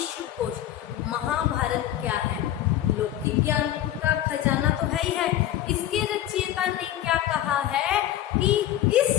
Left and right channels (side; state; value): right; quieter; 12.5 dB